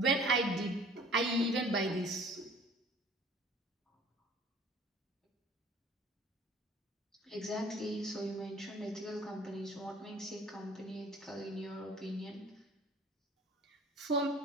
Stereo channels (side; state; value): both; normal; correlation 0.50